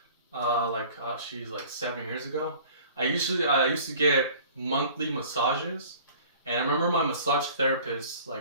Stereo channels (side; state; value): both; inverted; correlation -0.47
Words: like 7 years ago, I used to get monthly massages, and I remember my massage therapist,